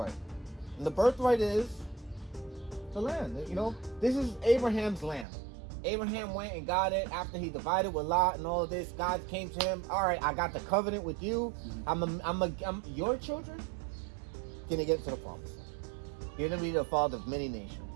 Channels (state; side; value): drops out; left; at 5.2 s